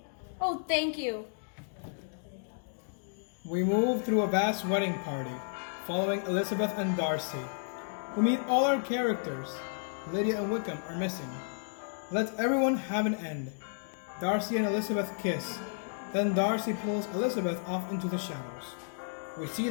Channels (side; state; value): right; silent; digital silence